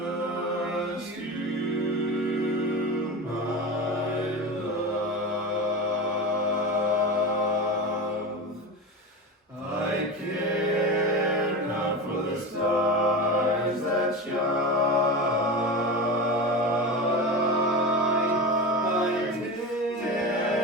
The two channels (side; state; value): both; normal; correlation 0.25